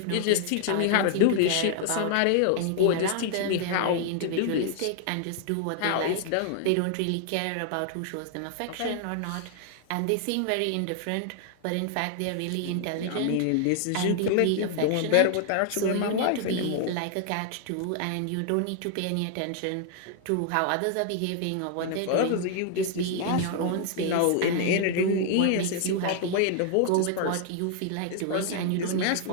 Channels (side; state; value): both; different; correlation 0.00